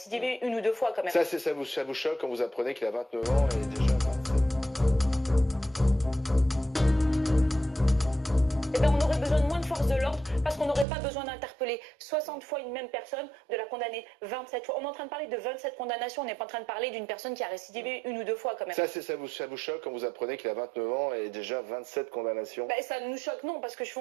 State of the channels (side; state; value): left; drops out; at 10.9 s